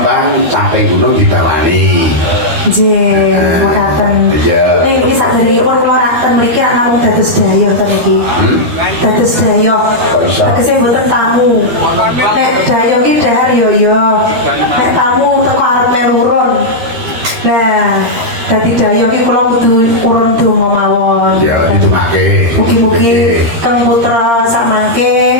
sampai gunung ditalani. Nggih, mekaten. Iya. Niki saderengipun kula raten mriki ana namung dados daya ten iki. Dados daya. Tegese mboten tamu. Nek daya iki dahar yo. Nek tamu teko arep melurun. Nah, dadi daya iki kula kudu urun donga mawon. Ya, ditungake. Mugi-mugi kang putra samangke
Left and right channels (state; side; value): late; left; 13 ms